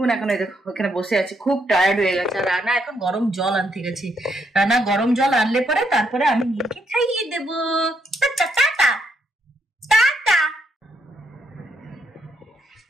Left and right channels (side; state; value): both; normal; correlation 0.76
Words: এখন ওখানে বসে আছে, খুব টায়ার্ড হয়ে গেছে। আর রানা এখন গরম জল আনতে গেছে। রানা গরম জল আনলে পরে তারপরে আমি নীলকে খাইয়ে দেবো। Tata tata tata